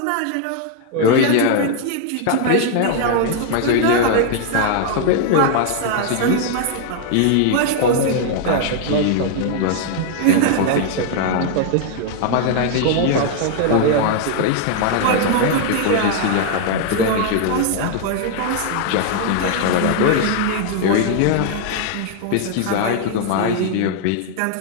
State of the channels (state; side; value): different; both; correlation 0.00